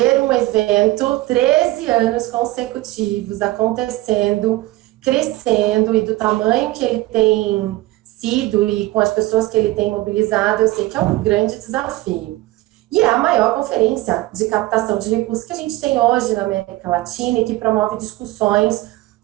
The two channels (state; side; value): quieter; left; 18.3 dB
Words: um evento 13 anos consecutivos acontecendo, crescendo, e do tamanho que ele tem sido e com as pessoas que ele tem mobilizado, eu sei que é um grande desafio. E é a maior conferência de captação de recursos que a gente tem hoje na América Latina e que promove discussões